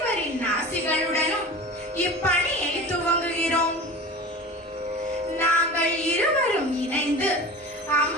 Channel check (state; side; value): normal; both; correlation 0.35